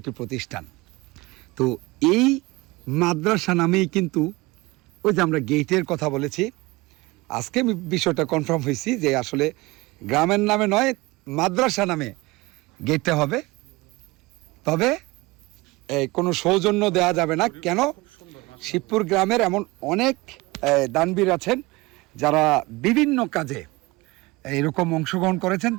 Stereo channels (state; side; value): quieter; left; 22.4 dB